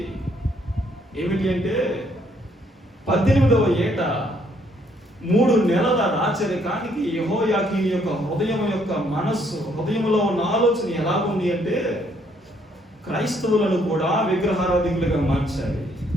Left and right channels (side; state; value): both; normal; correlation 0.68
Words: ఏమిటి అంటే 18వ ఏట 3 నెలల రాచరికానికి యెహోయాకీను యొక్క హృదయం యొక్క మనస్సు, హృదయంలో ఉన్న ఆలోచన ఎలా ఉంది అంటే క్రైస్తవులను కూడా విగ్రహారాధికులుగా మార్చాలి,